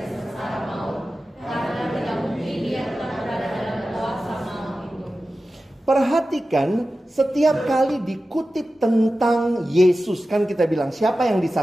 sengsara maut. Karena tidak mungkin dia tetap berada dalam kuasa maut itu. Perhatikan, setiap kali dikutip tentang Yesus, kan kita bilang siapa yang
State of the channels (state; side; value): normal; both; correlation 0.94